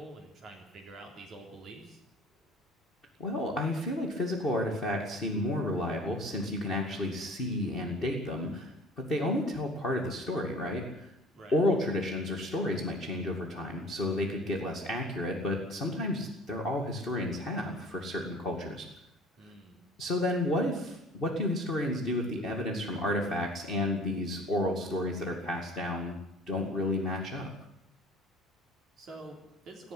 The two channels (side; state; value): both; normal; correlation 0.46